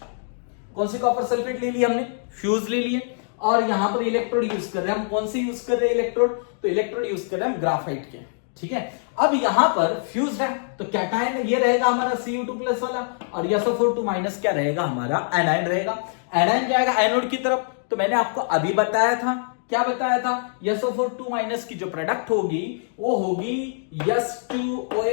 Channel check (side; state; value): right; silent; digital silence